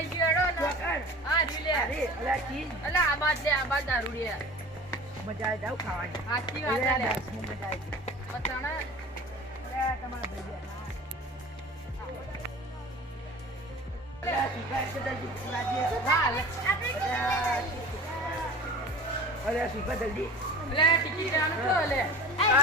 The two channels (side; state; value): both; normal; correlation 0.39